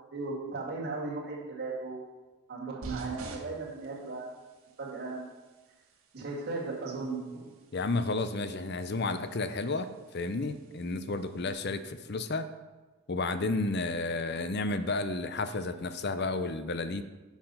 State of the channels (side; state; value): both; normal; correlation 0.18